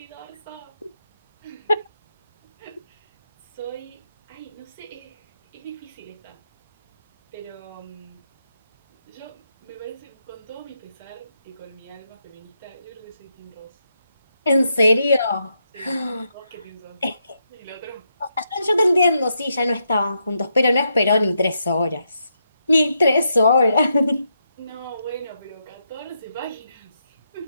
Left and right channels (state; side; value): inverted; both; correlation -0.81